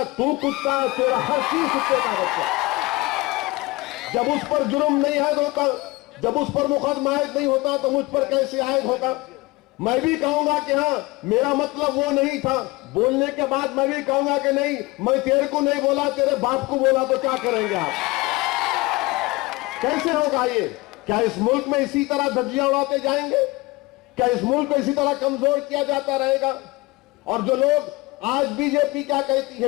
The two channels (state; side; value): quieter; right; 22.5 dB